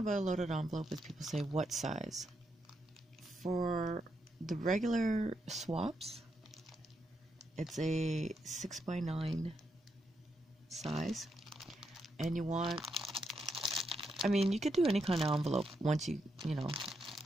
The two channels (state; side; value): normal; both; correlation 0.81